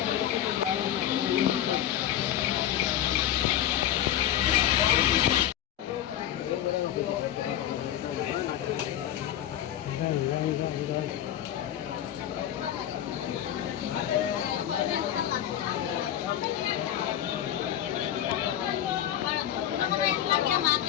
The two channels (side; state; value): right; quieter; 11.4 dB